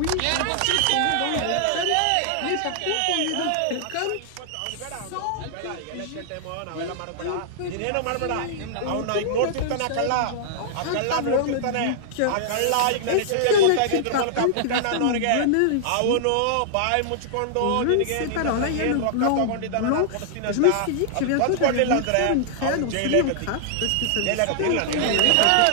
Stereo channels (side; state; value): both; different; correlation -0.01